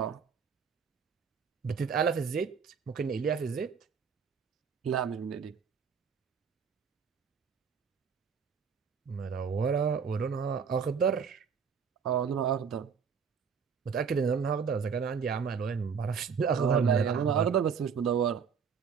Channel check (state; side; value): quieter; left; 6.4 dB